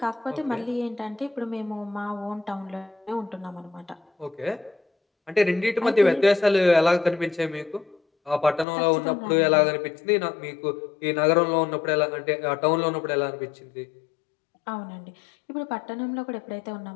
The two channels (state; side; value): drops out; right; at 8.7 s